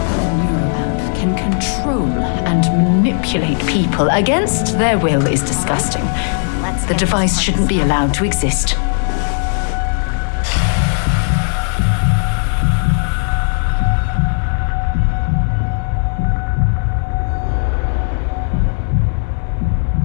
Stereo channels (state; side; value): silent; right; 69 dB below the other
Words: Can control and manipulate people against their will is disgusting. The device shouldn't be allowed to exist.